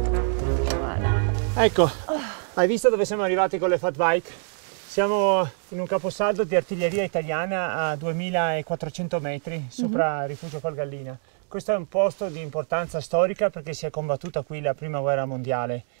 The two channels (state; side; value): silent; left; 59 dB below the other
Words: Ecco, hai visto dove siamo arrivati con le fat bike? Siamo in un caposaldo di artiglieria italiana a 2400 metri sopra Rifugio Colgallina. Questo è un posto di importanza storica perché si è combattuta qui la prima guerra mondiale.